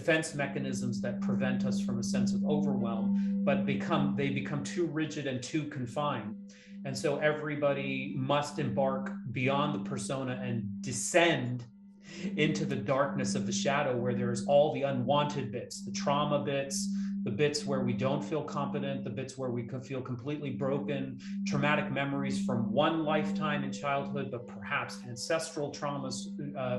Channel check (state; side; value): identical; both; correlation 1.00